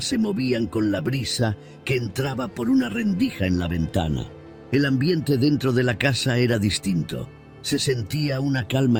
se movían con la brisa que entraba por una rendija en la ventana. El ambiente dentro de la casa era distinto. Se sentía una calma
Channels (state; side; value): identical; both; correlation 1.00